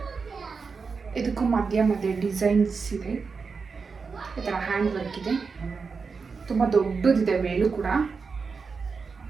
ಇದಕ್ಕೂ ಮಧ್ಯ ಡಿಸೈನ್ಸ್ ಇದೆ, ಈ ಥರ ಹ್ಯಾಂಡ್ ವರ್ಕ್ ಇದೆ. ತುಂಬ ದೊಡ್ಡದಿದೆ ವೇಲು ಕೂಡ.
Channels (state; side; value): quieter; left; 5.0 dB